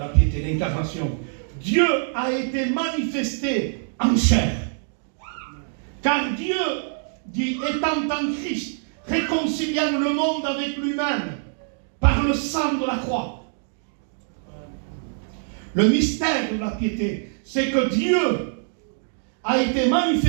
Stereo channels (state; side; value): silent; left; digital silence